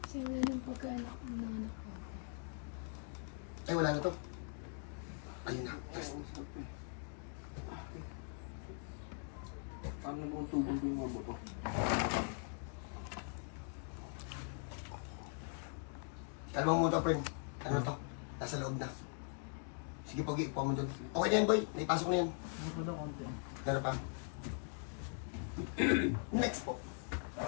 Sila yung pagkaanak ng mga anak ko. Ay, wala na to. Ayun na, test. Paano mo tubong po yung mga buto? Kalma mo to, friend. Ano to? Nasa loob na. Sige, Pogi, upo mo dun. Okay na yan, boy. Naipasok na yan. Ano pa daw konti? Meron pa. Next po.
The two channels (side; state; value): right; silent; 50 dB below the other